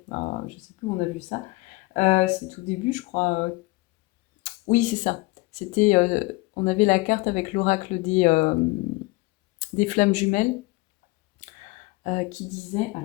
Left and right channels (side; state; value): right; quieter; 22.9 dB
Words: Je sais plus où on a vu ça. C'est tout début, je crois. Oui, c'est ça. C'était, on avait la carte avec l'oracle des flammes jumelles qui disait,